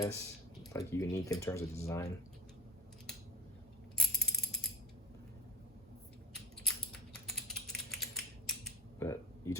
like unique in terms of design. But you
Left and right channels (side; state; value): both; normal; correlation 0.34